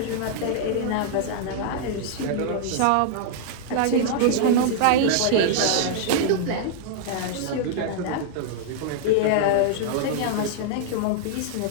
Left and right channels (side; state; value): both; different; correlation -0.01